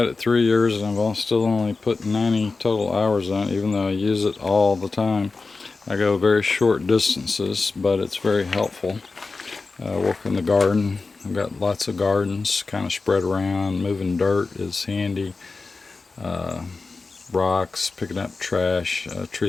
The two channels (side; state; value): right; quieter; 4.0 dB